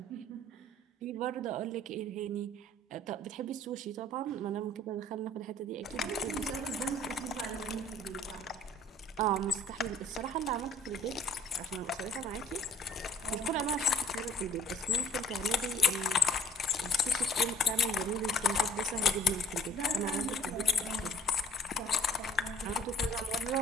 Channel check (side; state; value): both; normal; correlation 0.55